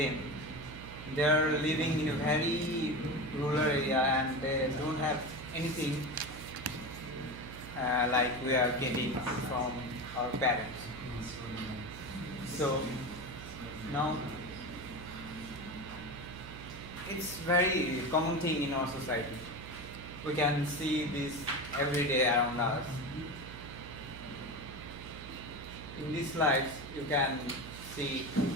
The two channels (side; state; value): right; noise; hum, 13 dB below the sound